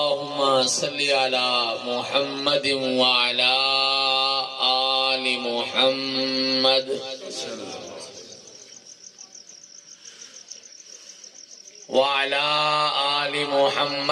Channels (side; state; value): both; identical; correlation 1.00